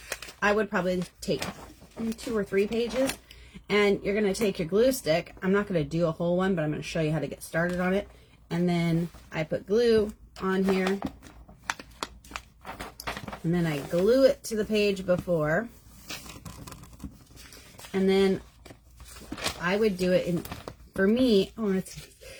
I would probably take 2 or 3 pages, and you're going to take your glue stick. I'm not going to do a whole one, but I'm going to show you how to get started on it. And then I put glue on here, and then I glue it to the page before, and then I would do it in, for me, oh, it's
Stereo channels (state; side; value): identical; both; correlation 1.00